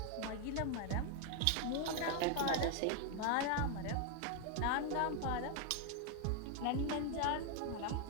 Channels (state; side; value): different; both; correlation 0.01